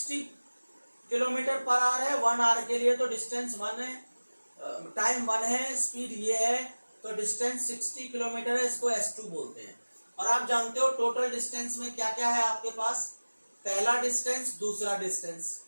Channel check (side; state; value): both; inverted; correlation -1.00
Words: किलोमीटर पर आवर है 1 आवर के लिए, तो डिस्टेंस 1 है, टाइम 1 है, स्पीड ये है, तो डिस्टेंस 60 किलोमीटर है, इसको S2 बोलते हैं। और आप जानते हो टोटल डिस्टेंस में क्या क्या है आपके पास, पहला डिस्टेंस, दूसरा डिस्टेंस,